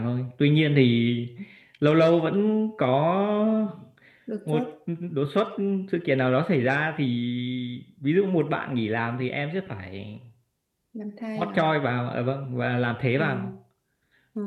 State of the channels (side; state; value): both; identical; correlation 1.00